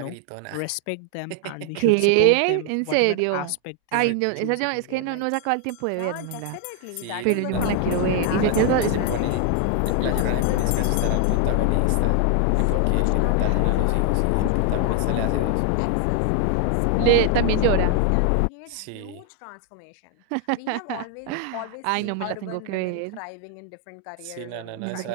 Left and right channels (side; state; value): both; different; correlation 0.00